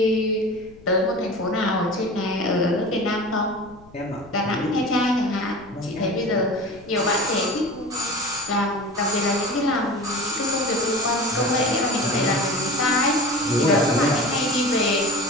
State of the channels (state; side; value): noise; left; rumble, 24 dB below the sound